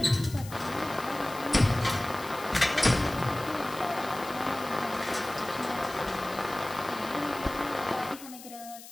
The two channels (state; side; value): noise; left; hiss, 16 dB below the sound